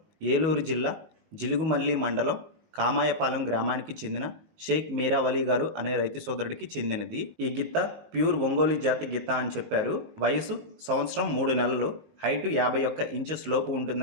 ఏలూరు జిల్లా జిలుగుమల్లి మండలం కామాయపాలెం గ్రామానికి చెందిన షేక్ మీరావలి గారు అనే రైతు సోదరుడికి చెందినది. ఈ గిత్త ప్యూర్ ఒంగోలు జాతి గిత్త అని చెప్పారు. వయసు సంవత్సరం 3 నెలలు, హైటు 51 ఇంచెస్ లోపు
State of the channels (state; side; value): late; left; 19 ms